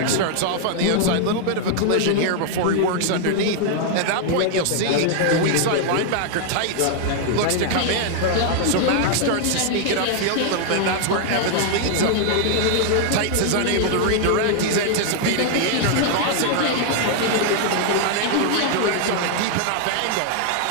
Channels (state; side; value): different; both; correlation 0.00